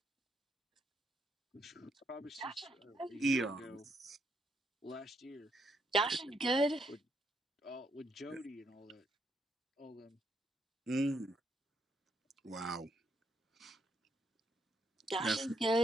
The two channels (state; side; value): normal; both; correlation 0.75